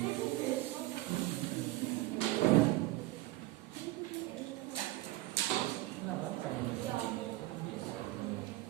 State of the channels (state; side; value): quieter; left; 18.4 dB